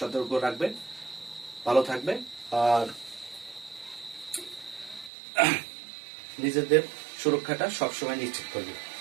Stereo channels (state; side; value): drops out; left; at 5.1 s